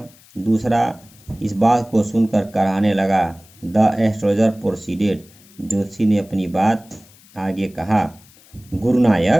दूसरा इस बात को सुनकर कराहने लगा। The astrologer proceeded. जोशी ने अपनी बात आगे कहा।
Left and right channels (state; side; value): noise; left; hiss, 26 dB below the sound